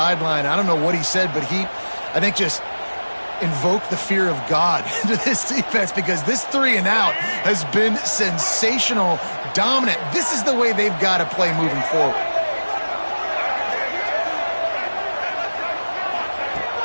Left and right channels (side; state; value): both; inverted; correlation -1.00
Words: I don't know what he said, but he, I think, just invoked the fear of God into this defense, because this 3 and out has been sensational, dominant. This is the way they've got to play moving forward.